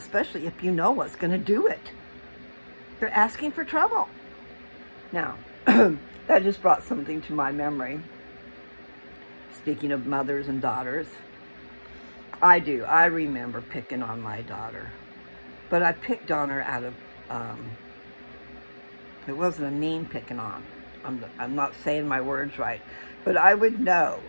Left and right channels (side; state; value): both; inverted; correlation -1.00